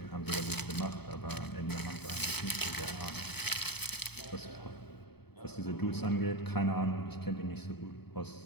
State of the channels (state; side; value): late; right; 0.98 ms